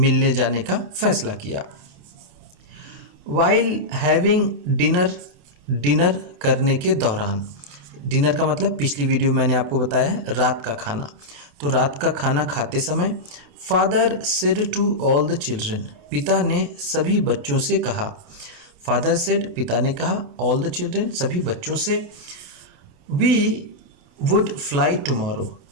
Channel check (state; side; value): late; left; 28 ms